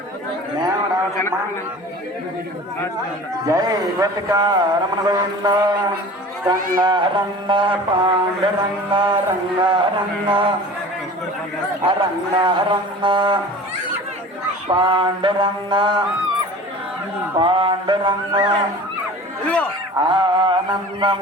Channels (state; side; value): normal; both; correlation 0.40